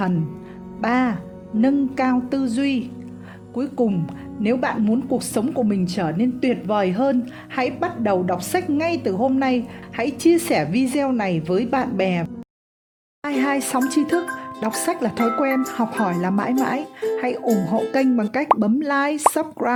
3. Nâng cao tư duy. Cuối cùng, nếu bạn muốn cuộc sống của mình trở nên tuyệt vời hơn, hãy bắt đầu đọc sách ngay từ hôm nay. Hãy chia sẻ video này với bạn bè. 22 Sóng tri thức, đọc sách là thói quen, học hỏi là mãi mãi. Hãy ủng hộ kênh bằng cách bấm like,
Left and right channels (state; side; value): identical; both; correlation 1.00